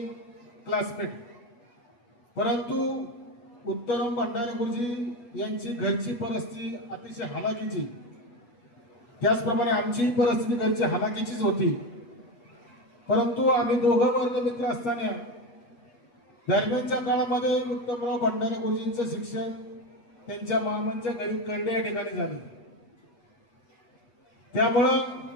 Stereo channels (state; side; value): late; right; 8.2 ms